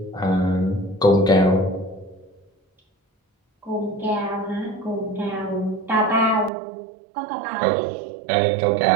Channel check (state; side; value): drops out; left; at 6.5 s